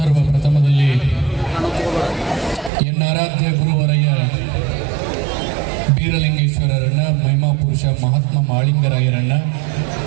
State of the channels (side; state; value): left; drops out; at 2.7 s